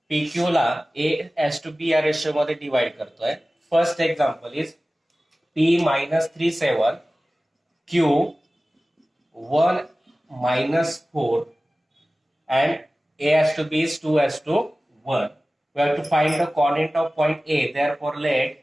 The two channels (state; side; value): normal; both; correlation 0.97